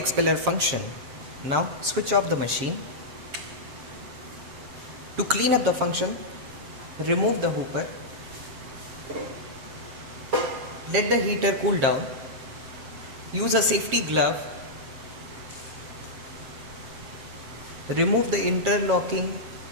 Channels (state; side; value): late; left; 7.4 ms